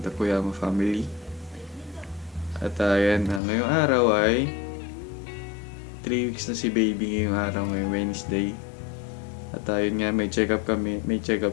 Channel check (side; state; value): right; drops out; at 3.4 s